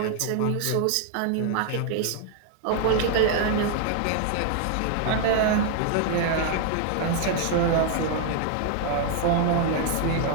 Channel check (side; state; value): both; different; correlation 0.00